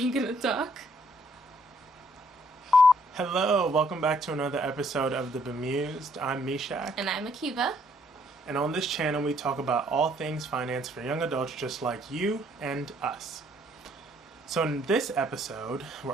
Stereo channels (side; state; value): both; normal; correlation 0.66